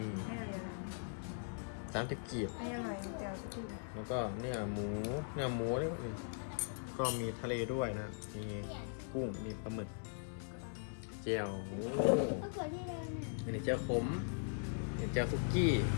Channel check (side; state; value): right; silent; digital silence